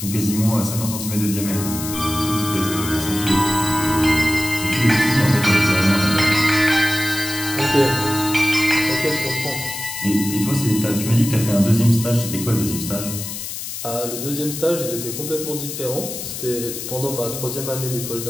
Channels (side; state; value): left; noise; hiss, 7 dB below the sound